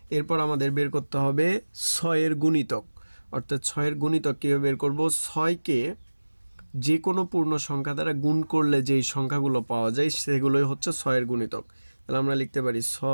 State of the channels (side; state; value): both; inverted; correlation -1.00